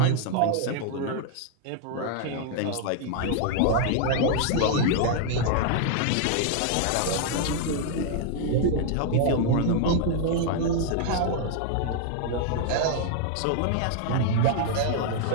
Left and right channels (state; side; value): different; both; correlation 0.00